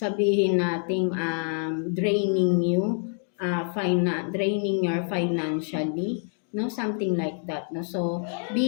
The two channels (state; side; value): silent; right; 55 dB below the other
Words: nating draining you, draining your financially, no, something like that, no, so